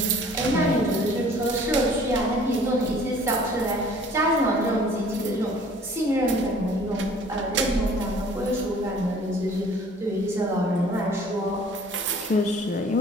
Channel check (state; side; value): normal; both; correlation 0.52